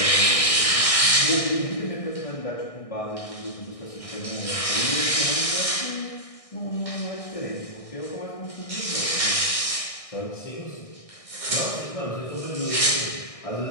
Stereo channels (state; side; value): late; right; 1.6 ms